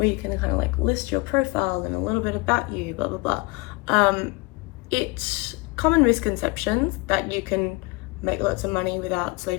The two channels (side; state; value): right; quieter; 25.2 dB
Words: you can kind of like list your profile and a little bit about you, blah, blah, blah. It's common misconceptions that you can make lots of money without